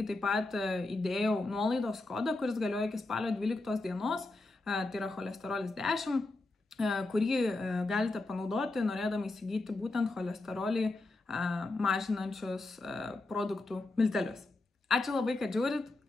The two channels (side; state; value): right; quieter; 3.1 dB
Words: taip pat įdėjau nuolaidos kodą, kuris galioja iki spalio 12 dienos, tai yra cholesterolis 10, kurį galite panaudoti, norėdami įsigyti būtent cholesterolį mažinančius produktų miltelius. Ačiū labai, kad žiūrit